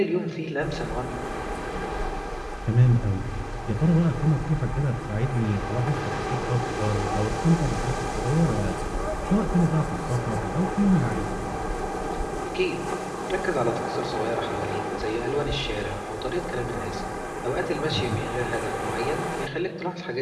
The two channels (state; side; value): identical; both; correlation 1.00